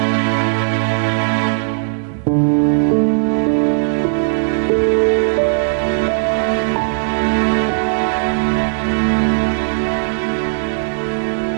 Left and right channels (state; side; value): silent; left; 66 dB below the other